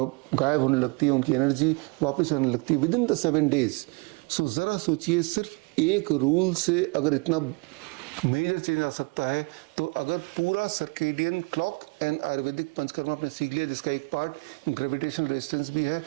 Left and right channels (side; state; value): left; quieter; 29.6 dB